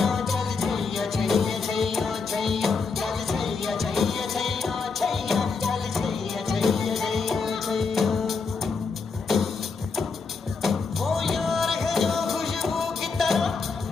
चल छैया छैया छैया छैया चल छैया छैया छैया छैया चल छैया छैया छैया छैया। वो यार है जो खुशबू की तरह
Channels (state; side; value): quieter; right; 4.8 dB